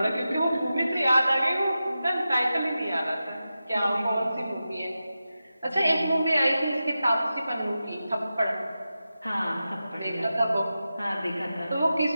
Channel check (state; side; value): inverted; both; correlation -0.92